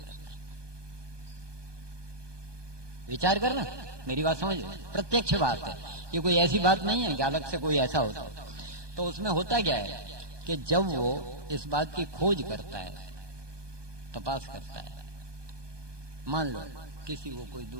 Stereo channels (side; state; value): left; late; 1.2 ms